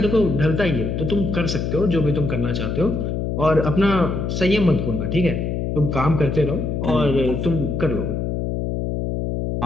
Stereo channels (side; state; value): left; noise; hum, 2 dB below the sound